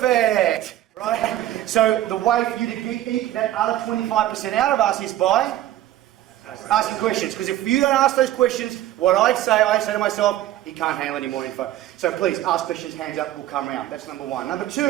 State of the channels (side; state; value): left; quieter; 13.5 dB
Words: Right? So the way for you to eke that other 25% out of us is by asking questions. Because if you don't ask those questions, what I say to myself, he can't handle any more info. So please, ask questions, hands up, we'll come around. That's number one. Number